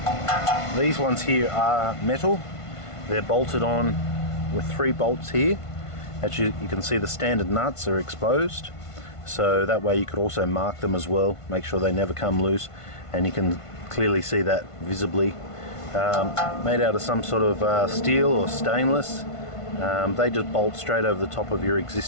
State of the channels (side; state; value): right; late; 1.5 ms